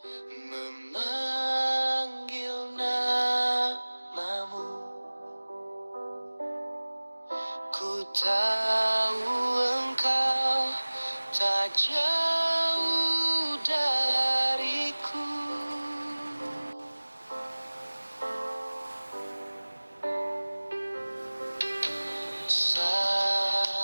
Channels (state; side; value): inverted; both; correlation -1.00